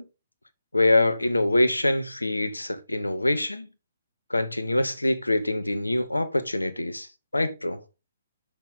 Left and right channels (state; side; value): inverted; both; correlation -0.95